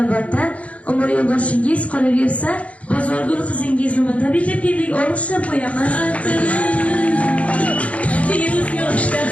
umr yo'ldoshingiz qolaversa, Bozorgul qizingiz nomidan tabriklab keldik, olqishlab qo'yamiz. Yuz yoshda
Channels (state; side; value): late; right; 0.065 ms